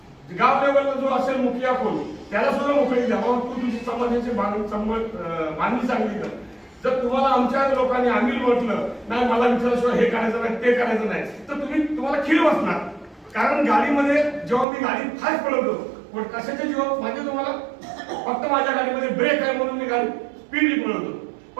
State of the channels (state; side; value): drops out; left; at 14.7 s